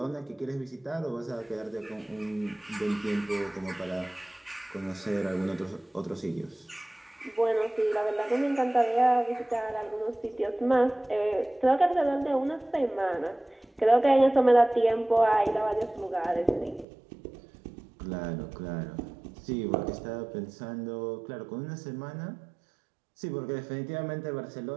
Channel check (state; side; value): drops out; left; at 16.9 s